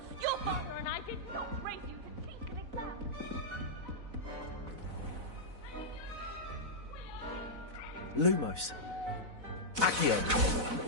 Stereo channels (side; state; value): left; late; 4.0 ms